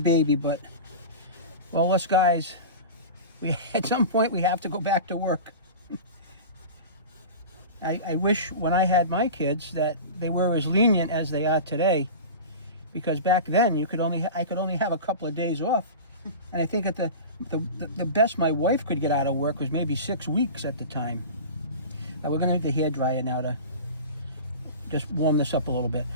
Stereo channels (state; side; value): inverted; both; correlation -0.31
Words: but well, us guys, at some point we have to go back to work. I wish when I had my kids that they were as lenient as they are today, because back then I could only have a couple of days off, and I think at the best my wife could get out of work was maybe 6 weeks at the time. Now we're going to need the hair dryer now to just warm this up a little bit.